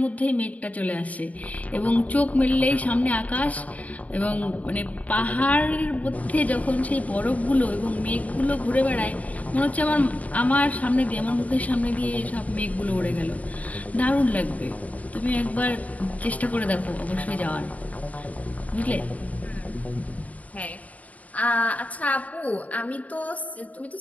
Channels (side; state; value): right; late; 0.071 ms